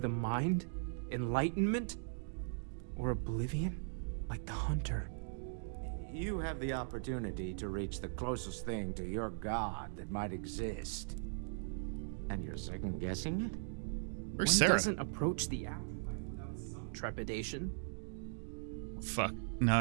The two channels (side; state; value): left; silent; digital silence